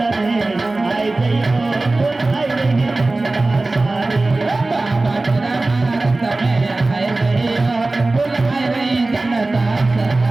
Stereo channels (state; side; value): quieter; left; 3.1 dB